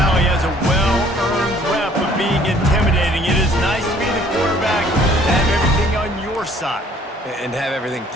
has a well-earned rep of being intimidating. It is nice to be the quarterback and have everything on your side. And have everything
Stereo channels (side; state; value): both; normal; correlation 0.58